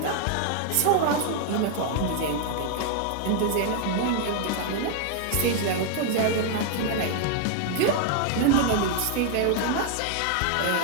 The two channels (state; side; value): different; both; correlation 0.00